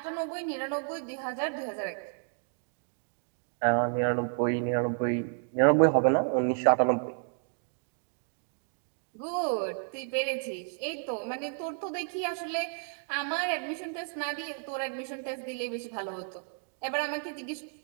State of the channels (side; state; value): left; silent; 57 dB below the other